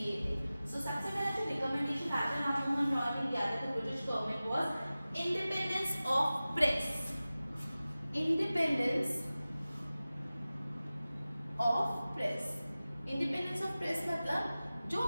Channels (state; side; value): inverted; both; correlation -0.96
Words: थे। सो सबसे पहला जो रिकमेंडेशन राजा राममोहन रॉय ने दिया था तो British government was independence of press. Independence of press, independence of press मतलब जो